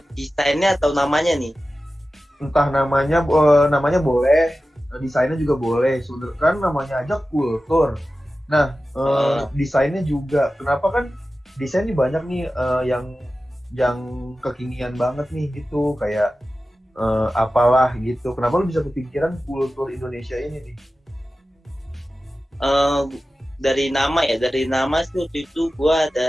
Desainnya atau namanya nih? Entah namanya boleh, desainnya juga boleh. Sebenarnya kan namanya aja kultur. Nah, desainnya juga. Kenapa kan desain ini banyak nih yang kekinian banget nih gitu, kayak apalah gitu. Kenapa lu bisa kepikiran kultur Indonesia ini nih? Dari nama sih waktu itu gue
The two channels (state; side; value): normal; both; correlation 0.94